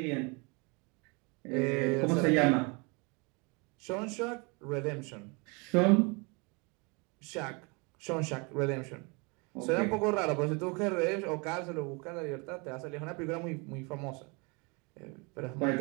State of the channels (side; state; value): left; quieter; 30.1 dB